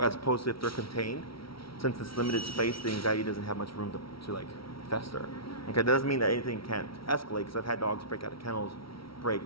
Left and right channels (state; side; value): late; right; 0.75 ms